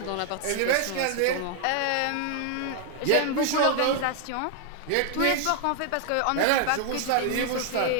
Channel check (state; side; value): different; both; correlation 0.00